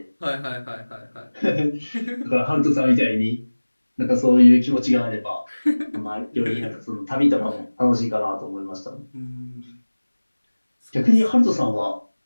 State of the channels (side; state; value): both; inverted; correlation -1.00